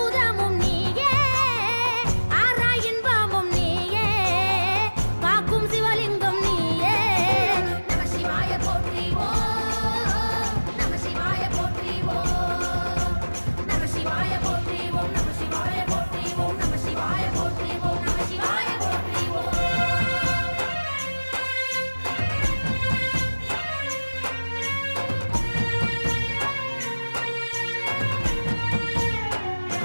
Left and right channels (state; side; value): inverted; both; correlation -1.00